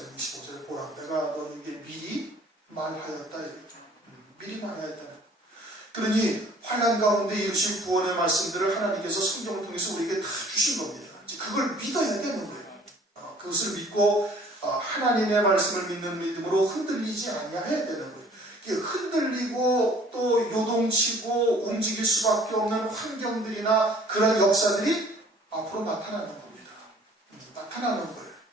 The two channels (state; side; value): normal; both; correlation 0.54